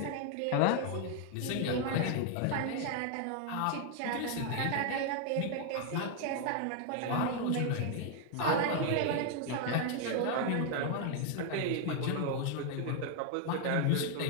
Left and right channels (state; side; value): different; both; correlation 0.00